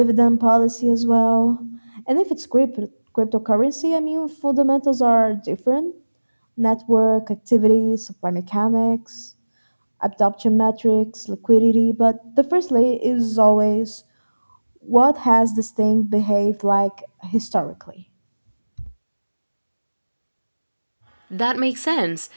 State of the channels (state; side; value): inverted; both; correlation -1.00